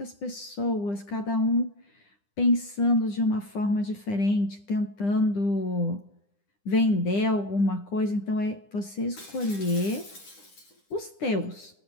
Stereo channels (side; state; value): right; late; 9.9 ms